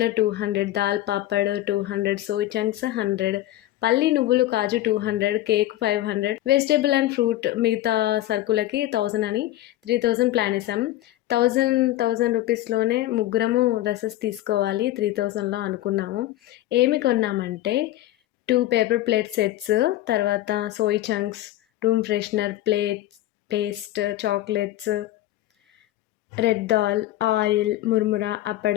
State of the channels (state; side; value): quieter; right; 14.9 dB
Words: 200, దాల్ పాపడ్ 200, సోయ్ చంక్స్ 100, పల్లి నువ్వులు కాజు 200, కేక్ 500, వెజిటేబుల్ అండ్ ఫ్రూట్ మిగతా సరుకులకి 1000 అని 3000 ప్లాన్ వేసాం. 1000 రూపీస్‌లోనే ముగ్గురము డ్రెసెస్ తీసుకోవాలి 3000లో అనుకున్నాము. ఏమి కొన్నామంటే 2 పేపర్ ప్లేట్ సెట్స్, తర్వాత soy chunks, room freshener, plates, paste, chocolates, red దాల్, ఆయిల్, మురుమురా,